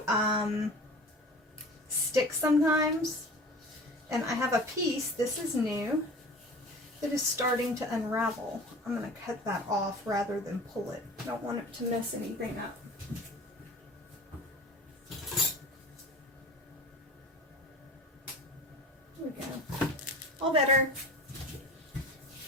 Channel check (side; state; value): both; normal; correlation 0.39